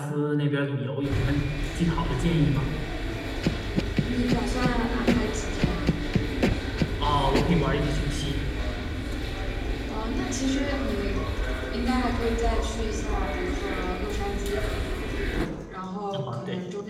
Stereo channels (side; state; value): both; identical; correlation 1.00